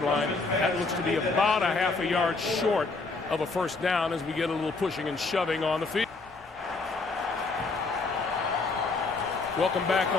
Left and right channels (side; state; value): right; quieter; 3.8 dB